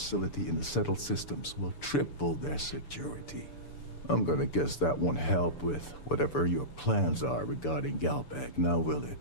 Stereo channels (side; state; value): right; late; 6.9 ms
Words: in the settled systems will triple their security. I'm gonna guess that won't help with whatever your plans are regarding Galbank, now will